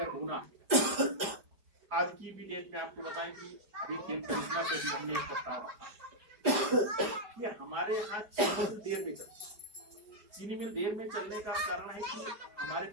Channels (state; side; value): late; left; 5.0 ms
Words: बोना, आज की भी डेट में आपको बताएं कि अभी खेत खरीदना से भी हमने एक प्रस्ताव रखा कि हमारे यहाँ चीनी मिल देर में चलती। चीनी मिल देर में चलने का कारण है कि हमारे